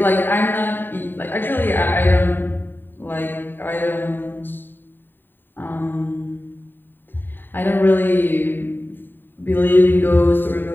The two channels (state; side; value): late; right; 0.094 ms